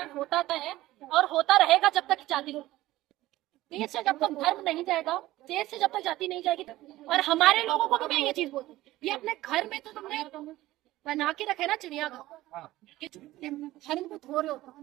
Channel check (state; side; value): quieter; left; 16.5 dB